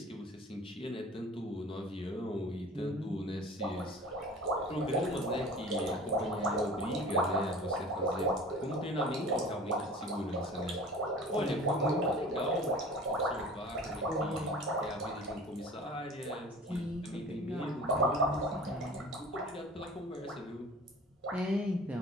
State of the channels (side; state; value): both; normal; correlation 0.42